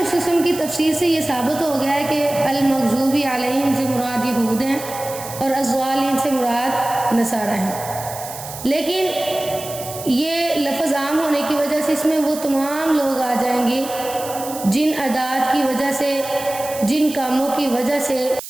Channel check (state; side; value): noise; right; hiss, 12 dB below the sound